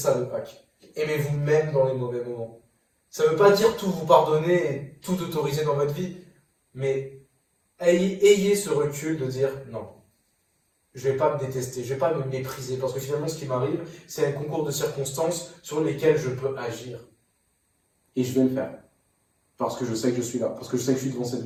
le pack. Aimez-vous même dans les mauvais moments. Ça ne veut pas dire tout vous pardonner et tout autoriser dans votre vie, mais ayez ce recul de dire non. Je ne vais pas me détester, je ne vais pas me mépriser, parce que finalement, ce qui m'arrive, c'est un concours de circonstances sur lesquelles je peux agir. Et je vais le faire. Parce que je sais que je suis là, parce que je sais que je suis devant cette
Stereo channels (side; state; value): both; identical; correlation 1.00